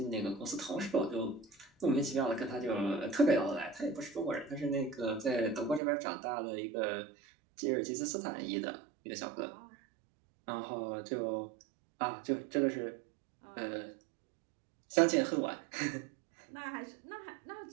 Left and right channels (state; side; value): drops out; left; at 5.8 s